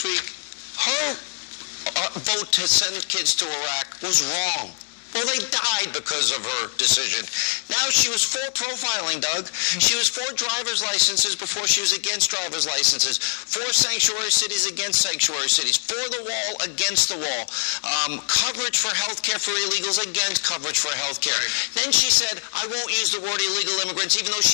week her vote to send kids to Iraq was wrong. Well, they died because of her decision. Now she was for profiling, Doug. She was for driver's licenses before she was against driver's licenses. For sanctuary cities against sanctuary cities. For the wall against the wall. Coverage for health care for illegals against coverage for health care. Then she said, I won't use the word illegal immigrants, even though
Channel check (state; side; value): silent; right; 63 dB below the other